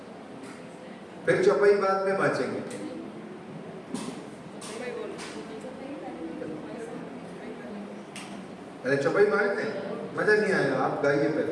फिर चौपाई बाद में बाँचेंगे। अरे चौपाई बाँचते हैं, मजा नहीं आएगा, आप गाइए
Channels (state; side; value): identical; both; correlation 1.00